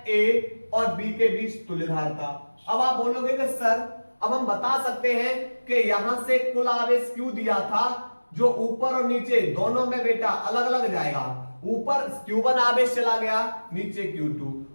A और B के बीच तुल्य धारता। अब आप बोलोगे कि सर अब हम बता सकते हैं कि यहां से कुल आवेश Q दिया था, जो ऊपर और नीचे दोनों में बेटा अलग अलग जाएगा। ऊपर Q1 आवेश चला गया, नीचे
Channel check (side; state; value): both; inverted; correlation -1.00